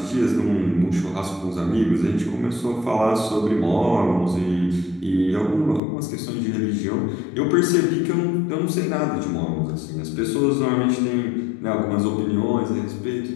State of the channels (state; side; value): drops out; right; at 5.8 s